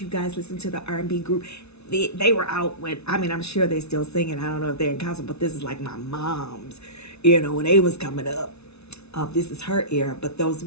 you guys listen to the R&B group. They were out when, I mean, I'm sure they're still singing. I don't know if they're in concert, but this is like my mom's, when they was coming up. This is her era. But those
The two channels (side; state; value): right; late; 0.80 ms